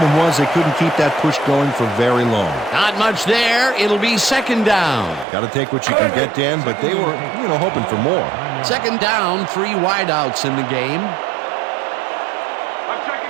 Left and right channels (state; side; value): drops out; left; at 5.2 s